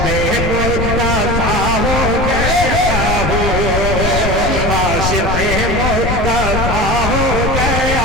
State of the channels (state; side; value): noise; left; rumble, 2 dB below the sound